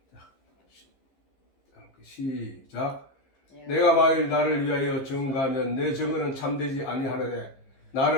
시작. 내가 만일 나를 위하여 증거하면 내 증거는 참되지 아니하느냐.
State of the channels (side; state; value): right; late; 15 ms